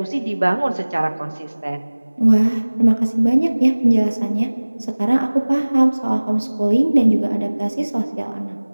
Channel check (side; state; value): both; inverted; correlation -1.00